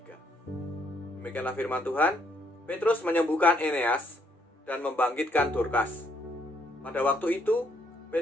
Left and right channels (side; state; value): both; normal; correlation 0.71